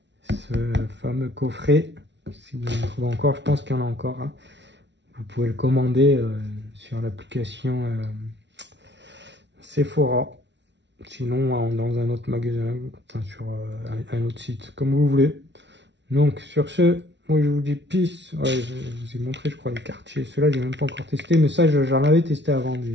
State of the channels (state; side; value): late; left; 0.51 ms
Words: ce fameux coffret. Si vous en trouvez encore, je pense qu'il y en a encore, hein. Vous pouvez le commander sur l'application Sephora. Sinon, dans un autre magasin, enfin, sur un autre site, comme vous voulez. Donc, sur ce, moi, je vous dis peace. Ouais, je vous ai montré, je crois, les quartiers. Ceux-là, j'ai même pas encore testé, mais ça, j'en avais testé avant,